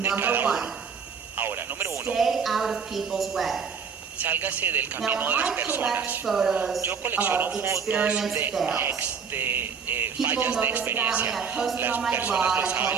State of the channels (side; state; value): left; quieter; 6.2 dB